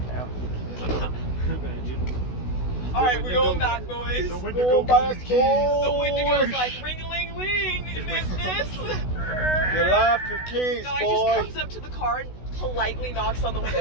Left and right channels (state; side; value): late; right; 16 ms